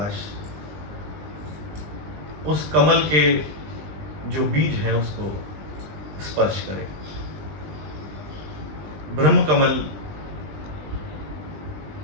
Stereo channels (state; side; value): late; left; 20 ms